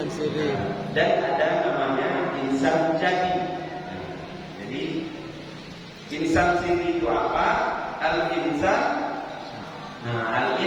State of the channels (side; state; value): both; identical; correlation 1.00